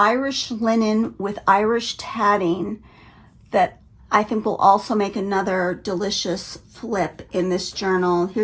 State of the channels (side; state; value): both; identical; correlation 1.00